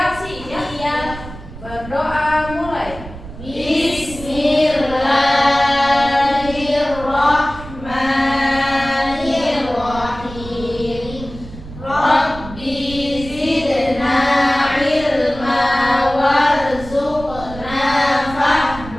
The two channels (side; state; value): right; noise; rumble, 14 dB below the sound